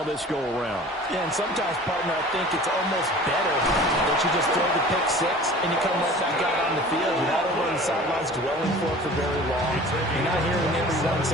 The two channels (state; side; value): normal; both; correlation 0.43